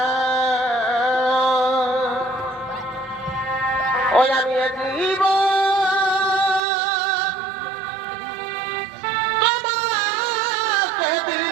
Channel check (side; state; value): left; drops out; at 6.6 s